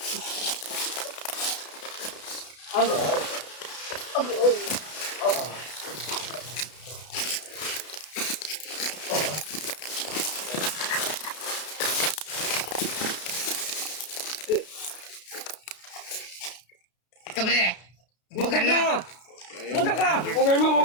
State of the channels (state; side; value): late; right; 32 ms